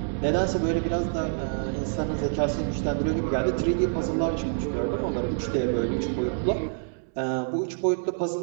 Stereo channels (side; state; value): left; silent; digital silence